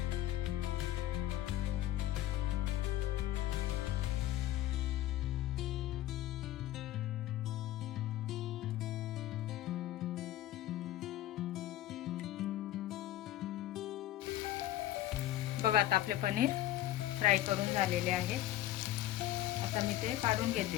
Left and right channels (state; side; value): quieter; right; 14.1 dB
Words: बघा आता आपले पनीर फ्राय करून झालेले आहे। आता मी ते काढून घेते